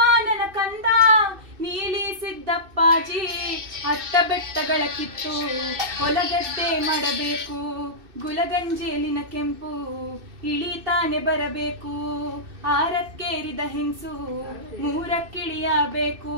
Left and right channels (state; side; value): late; left; 2.6 ms